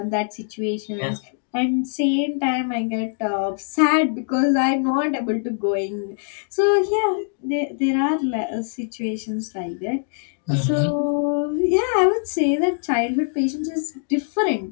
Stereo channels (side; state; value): right; silent; digital silence